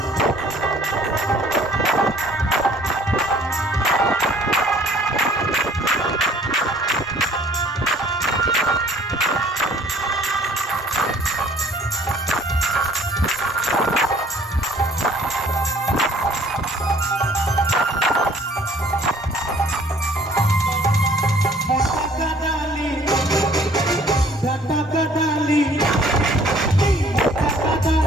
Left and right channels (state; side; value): normal; both; correlation 0.56